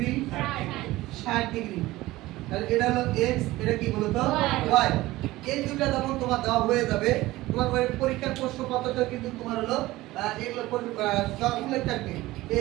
60 ডিগ্রি। তাহলে এটা হলো x, এটা কি বলতো? y। এই দুটো যখন তোমার দেওয়া হয়ে যাবে, তোমার পরীক্ষার প্রশ্নপত্রটা কিন্তু তোমার হলো এগুলো উল্লেখ থাকবে।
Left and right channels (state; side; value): quieter; left; 18.1 dB